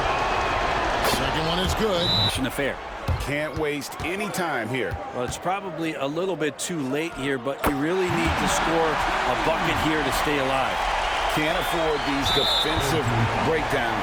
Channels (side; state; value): both; identical; correlation 1.00